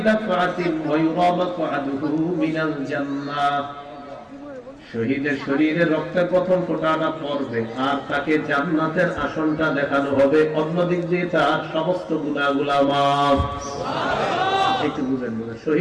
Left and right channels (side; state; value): both; identical; correlation 1.00